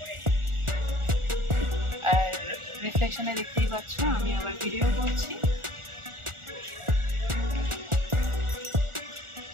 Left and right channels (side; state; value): left; late; 1.4 ms